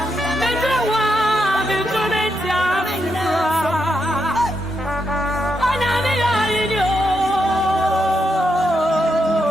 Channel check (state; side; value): normal; both; correlation 0.82